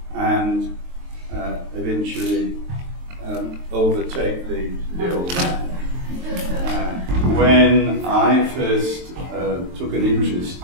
and eventually overtake the old man. When I first took an interest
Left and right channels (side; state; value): left; late; 23 ms